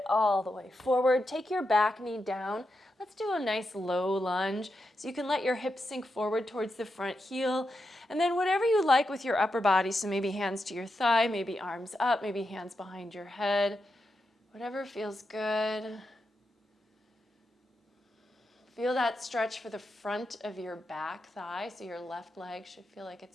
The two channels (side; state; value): both; normal; correlation 0.86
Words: all the way forward. Take your back knee down. Let's do a nice low lunge. So you can let your hips sink forward towards the front heel. And then whatever you like with your upper body. So maybe hands to your thigh, maybe arms up, maybe hands behind your head. Whatever feels good. Feel that stretch for the front of your back thigh, so your left leg should feel like